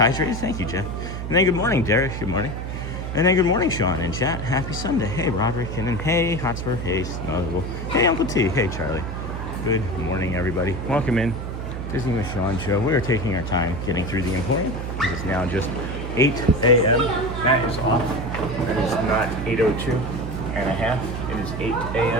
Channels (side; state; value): right; noise; hum, 6 dB below the sound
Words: Thank you, Jeff. And then good morning, Derek. Good morning. And then good morning, Sean in chat. Happy Sunday. Hey, Roderick. And then hey, Hotspur. Hey, Snuggle. Hey, Uncle T. Hey, Charlie. Good morning, everybody. Welcome in Disney with Sean show. We are taking our time getting through the Emporium. It is now just 8 a.m. That is off. That is not 8:02 and a half. It is 8